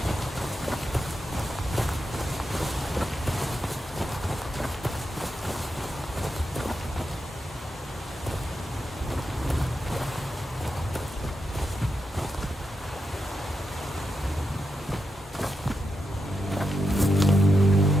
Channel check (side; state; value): both; normal; correlation 0.86